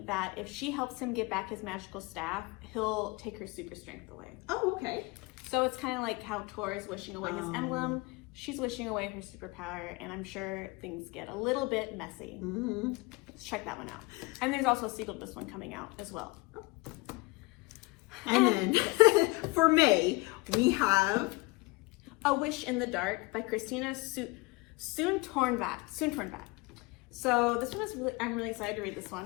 that if she helps him get back his magical staff, he'll take her super strength away. Oh, okay. So it's kind of like how Tor is wishing away his emblem. she's wishing away her superpower, and I'm sure things get a little bit messy. Let's check that one out. And there's also a sequel to this one coming out as well. And then for May, we have A Wish in the Dark by Christina Soontornvat. So this one is I'm really excited to read this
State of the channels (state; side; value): quieter; right; 24.0 dB